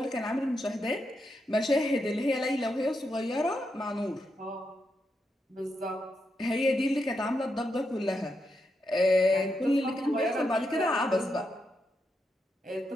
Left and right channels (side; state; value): both; normal; correlation 0.83